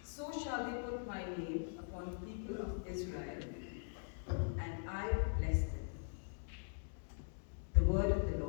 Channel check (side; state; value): right; silent; digital silence